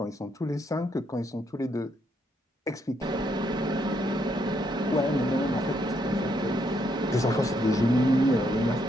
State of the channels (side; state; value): both; normal; correlation 0.74